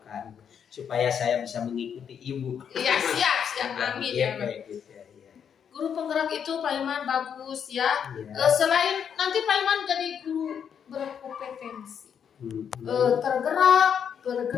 supaya saya bisa mengikuti ibu. Iya, siap, amin. Iya. Guru penggerak itu Pak Hilman bagus ya. Selain nanti Pak Hilman jadi guru berkompetensi, tergerak,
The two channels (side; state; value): right; quieter; 7.8 dB